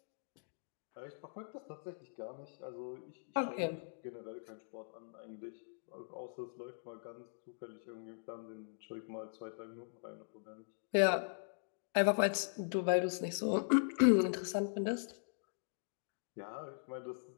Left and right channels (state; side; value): silent; right; digital silence